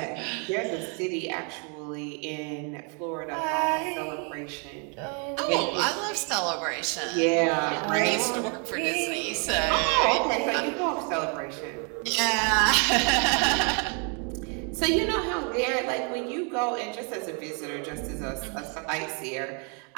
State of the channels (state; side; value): quieter; left; 37.4 dB